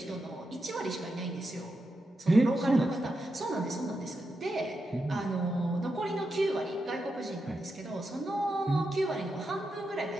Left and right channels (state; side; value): normal; both; correlation 0.87